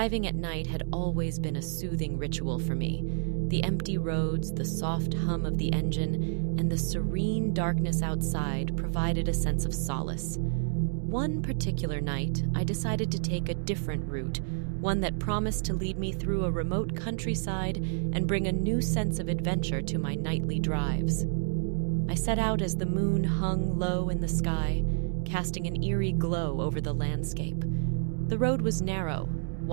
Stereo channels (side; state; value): left; silent; digital silence